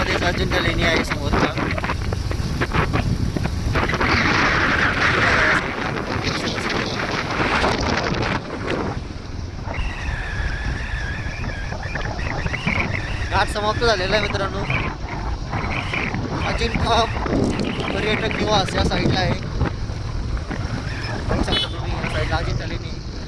अजिंठा लेणी आहे समोरचा. घाट समाप्त झालेला आहे मित्रांनो. अजिंठा पर्यटक निवास या साईडला आहे, बघू शकता तुम्ही या साईडला अजिंठा लेणी.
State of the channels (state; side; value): identical; both; correlation 1.00